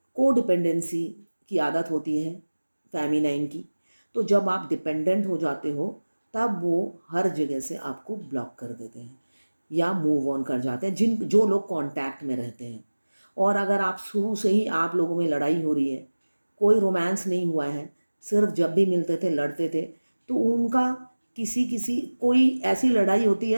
को डिपेंडेंसी की आदत होती है फेमिनाइन की, तो जब आप डिपेंडेंट हो जाते हो तब वो हर जगह से आपको ब्लॉक कर देते हैं या मूव ऑन कर जाते हैं, जो लोग कांटेक्ट में रहते हैं। और अगर आप शुरू से ही आप लोगों में लड़ाई हो रही है, कोई रोमांस नहीं हुआ है, सिर्फ जब भी मिलते थे लड़ते थे, तो उनका किसी किसी कोई ऐसी लड़ाई होती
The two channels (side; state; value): both; inverted; correlation -1.00